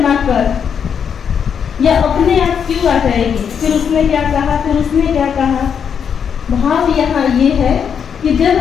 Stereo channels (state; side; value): quieter; right; 7.4 dB